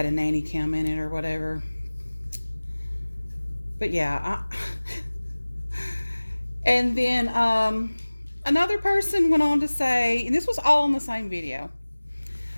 a nanny cam in it or whatever. But yeah, and then another person went on to say, and this was all in the same video.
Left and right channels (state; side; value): inverted; both; correlation -1.00